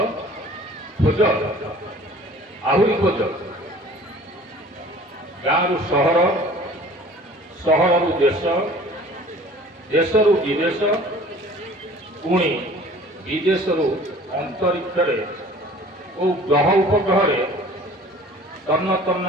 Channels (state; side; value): normal; both; correlation 0.48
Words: খোঁজ আହୁରି ଖୋଜ। ଗାଁରୁ ସହର, ସହରରୁ ଦେଶ, ଦେଶରୁ ବିଦେଶ, ପୁଣି ବିଦେଶରୁ ଅନ୍ତରିକ୍ଷରେ ଓ ଗ୍ରହ ଉପଗ୍ରହରେ ତନ୍ନ ତନ୍ନ